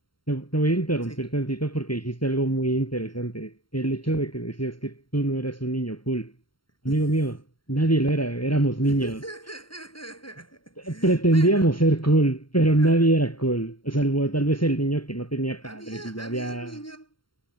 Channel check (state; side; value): late; right; 0.73 ms